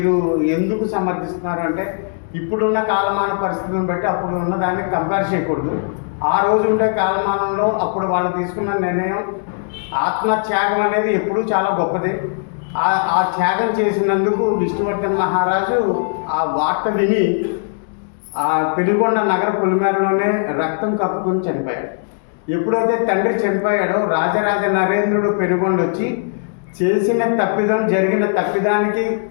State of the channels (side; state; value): right; silent; digital silence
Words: ఎందుకు సమర్థిస్తున్నారు అంటే, ఇప్పుడున్న కాలమాన పరిస్థితులను బట్టి అప్పుడు ఉన్న దాన్ని కంపేర్ చేయకూడదు. ఆ రోజు ఉండే కాలమానంలో అప్పుడు వాళ్ళు తీసుకున్న నిర్ణయం ఆత్మత్యాగం అనేది ఎప్పుడూ చాలా గొప్పదే. ఆ త్యాగం చేసినందుకు విష్ణువర్ధన్ మహారాజు ఆ వార్త విని ఆ పెనుగొండ నగర పొలిమేరలోనే రక్తం కప్పుకొని చనిపోయాడు. ఎప్పుడైతే తండ్రి చనిపోయాడో రాజరాజ నరేంద్రుడు పెనుగొండ వచ్చి జరిగిన తప్పిదానికి